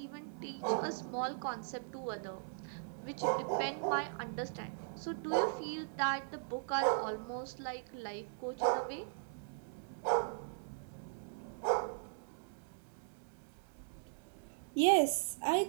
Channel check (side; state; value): left; silent; digital silence